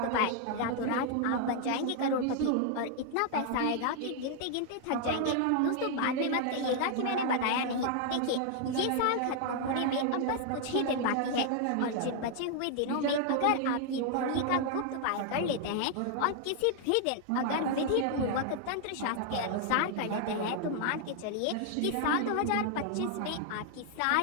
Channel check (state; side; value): different; both; correlation 0.00